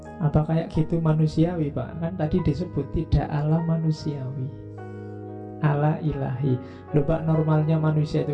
Apa kayak gitu manusiawi, Pak? Kan tadi disebut tidak ala manusiawi, ala ilahi. Loh Pak, normalnya manusia itu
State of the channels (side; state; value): both; identical; correlation 1.00